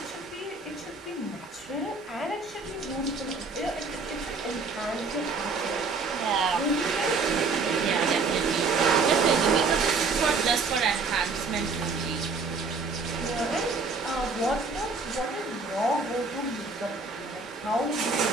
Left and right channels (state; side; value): quieter; left; 4.3 dB